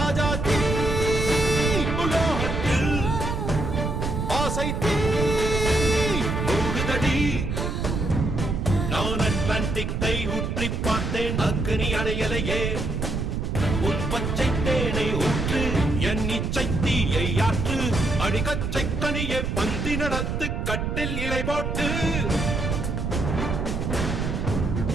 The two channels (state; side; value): noise; right; rumble, 1 dB below the sound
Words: தீ உலோகத்தில் ஆசை தீ மூடுதடி நான் அட்லாண்டிக்கை ஊற்றி பார்த்தேன் அக்னி அணையலையே உன் பச்சை தேனை ஊற்று என் இச்சை தீயை ஆற்று அடிக்கச்சை கனியை பந்தி நடத்து கட்டில் இலை போட்டு